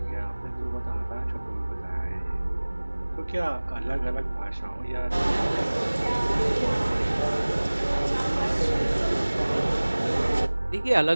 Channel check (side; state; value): both; inverted; correlation -1.00